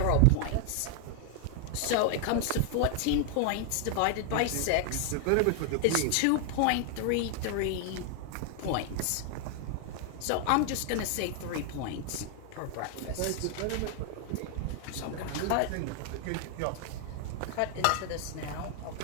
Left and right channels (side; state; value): both; different; correlation 0.00